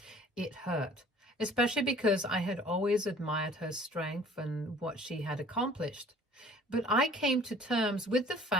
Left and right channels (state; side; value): normal; both; correlation 0.52